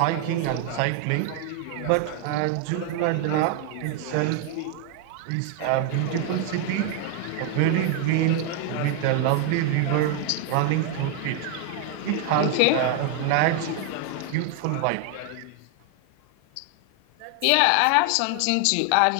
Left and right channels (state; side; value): different; both; correlation 0.00